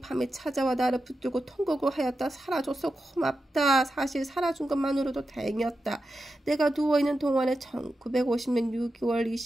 밤에 찾아와 나를 붙들고 통곡을 하였다. 살아줘서 고맙다. 사실 살아준 것만으로도 다행이었다. 내가 누워있는 동안에 1950년 6월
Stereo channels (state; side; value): normal; both; correlation 0.90